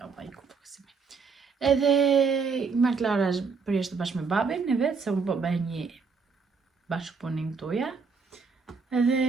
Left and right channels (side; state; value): left; quieter; 5.1 dB